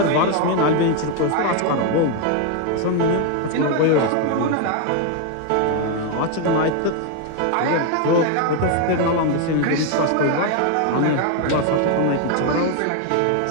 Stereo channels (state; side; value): different; both; correlation 0.01